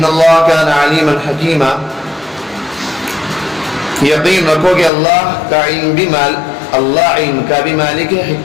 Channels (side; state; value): right; drops out; at 4.9 s